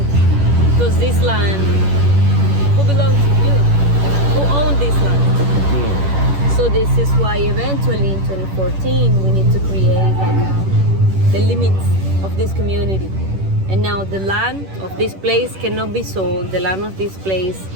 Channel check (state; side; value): late; left; 10 ms